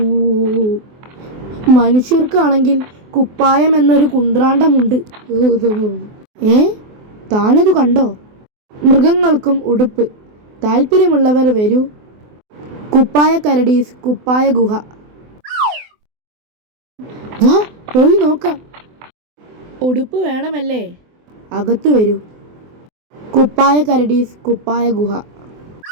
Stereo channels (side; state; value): left; late; 24 ms